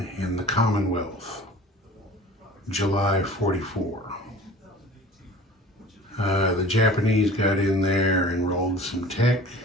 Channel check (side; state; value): both; normal; correlation 0.43